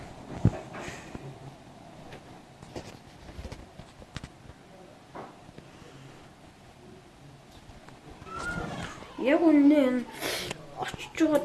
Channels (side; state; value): both; identical; correlation 1.00